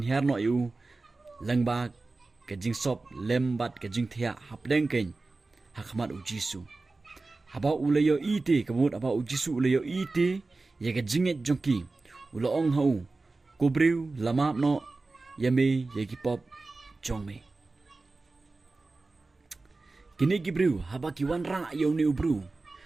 no yu langba ka jing sop lem bat ka jing thia hapleng ken hakmat u jisu haba ulayo ite kamut aba u jisu ulayo ite ye ka jinget jongki ulo ong hau kubriu lama no yame ye ki pop jongme kini gibriu haba ki wan ra yo ni ubru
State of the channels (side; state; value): left; quieter; 3.5 dB